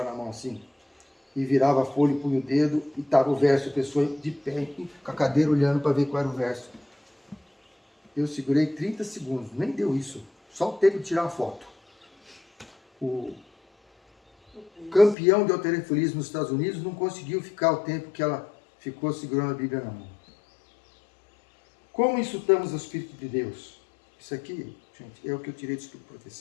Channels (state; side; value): drops out; right; at 15.2 s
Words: na mão assim. E virava a folha e punha o dedo e estava o verso, a pessoa de pé, com a cadeira olhando para ver qual era o verso. Eu segurei 30 segundos, nem deu isso. Só o tempo de tirar uma foto. O campeão de halterofilismo nos Estados Unidos não conseguiu ficar o tempo que ela ficou segurando a Bíblia na mão. Como insultamos o Espírito de Deus? Isso aqui, gente, é o que eu tirei do Espírito de